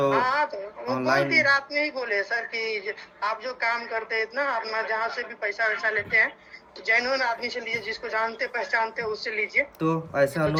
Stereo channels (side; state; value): both; identical; correlation 1.00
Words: हाँ तो वो बोल दिए रात में ही बोले सर कि आप जो काम करते हैं इतना अपना जहाँ से भी पैसा वैसा लेते हैं तो जेन्युइन आदमी से लीजिए, जिसको जानते पहचानते उससे लीजिए, तो ऐसा तो